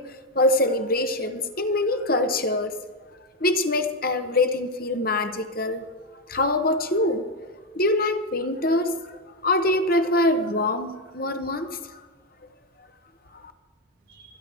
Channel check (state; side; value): normal; both; correlation 0.07